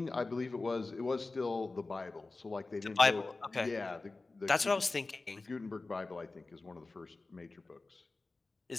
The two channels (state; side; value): quieter; right; 3.5 dB